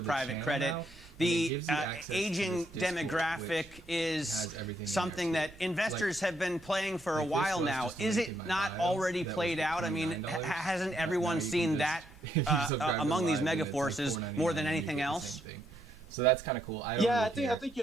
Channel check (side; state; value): right; noise; hum, 25 dB below the sound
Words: the private channel credit. now, and it The gives you access to aging this Discord, demographic which is has everything in there, something too. that investors have been playing for a like this while was now. just Is linked it in my not bio. already That was played for out? I mean, $29. hasn't Now everyone you can seen just- that if you subscribe to among these Live, then mega it's like forces $4.99 more than and you anything get the else? same thing. So that's kind of cool. I don't Yeah, really I think